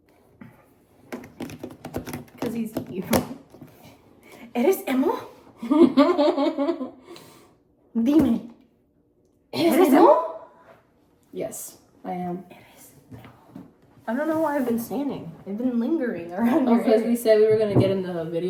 Because he's evil. ¿Eres emo? Dime. ¿Eres emo? Yes, I am. I don't know why I've been standing. I've been lingering around Oh, your because area. we said we were gonna get in the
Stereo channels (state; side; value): identical; both; correlation 1.00